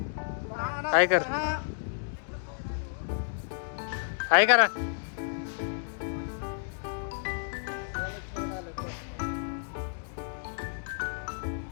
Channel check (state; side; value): silent; right; digital silence